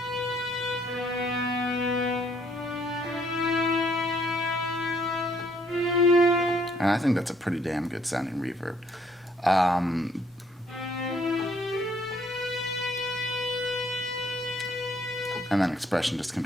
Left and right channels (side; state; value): both; normal; correlation 0.66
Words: And I think that's a pretty damn good sounding reverb. and then expression just